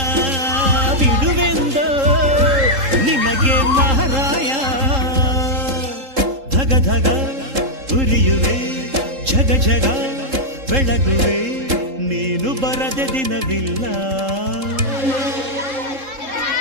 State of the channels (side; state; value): left; late; 3.7 ms